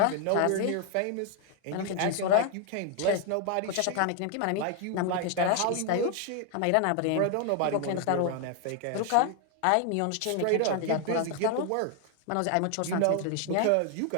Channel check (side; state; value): both; different; correlation 0.00